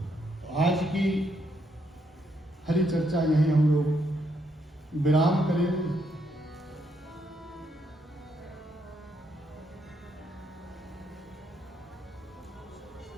तो आज की हरि चर्चा यहीं हम लोग विराम करेंगे।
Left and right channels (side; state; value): both; normal; correlation 0.76